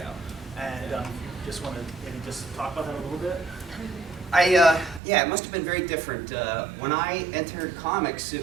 And just want to maybe just talk about that a little bit. Yeah, it must have been very different. When I entered comics,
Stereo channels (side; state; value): left; drops out; at 5.0 s